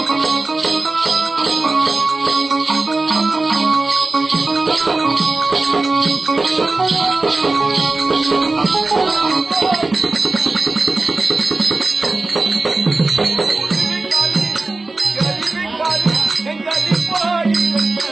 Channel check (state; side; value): quieter; left; 3.3 dB